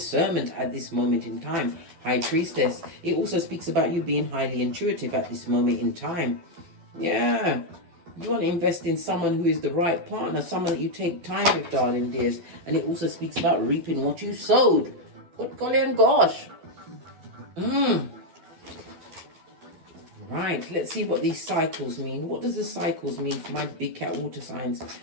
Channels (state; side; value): late; left; 12 ms